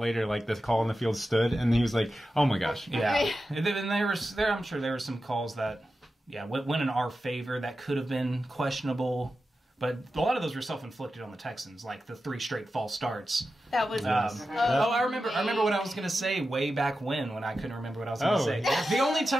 like the call in the field stood, and he was like, oh my gosh. Yeah. And I'm sure there were some calls that, went in our favor that could have been questionable. But a lot of those were self-inflicted on the Texans, like the 3 straight false starts. That was I remember what I was going to say way back when I couldn't remember what I was going to say. The only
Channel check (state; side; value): normal; both; correlation 0.92